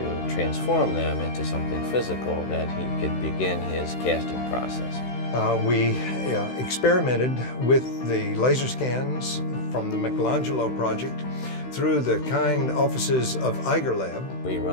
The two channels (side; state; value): right; late; 16 ms